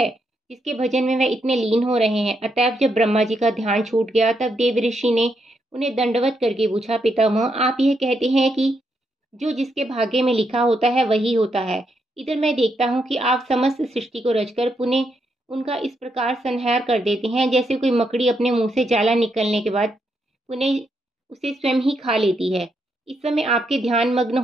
जिसके भजन में वह इतने लीन हो रहे हैं? अतएव जब ब्रह्मा जी का ध्यान छूट गया तब देव ऋषि ने उन्हें दंडवत करके पूछा, पितामह, आप यह कहते हैं कि जो जिसके भाग्य में लिखा होता है वही होता है। इधर मैं देखता हूँ कि आप समस्त सृष्टि को रचकर पुनः उनका इस प्रकार संहार कर देते हैं जैसे कोई मकड़ी अपने मुंह से जाला निकलने के बाद पुनः उसे स्वयं ही खा लेती है। इस समय आपके ध्यान मग्न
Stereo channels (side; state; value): both; normal; correlation 0.79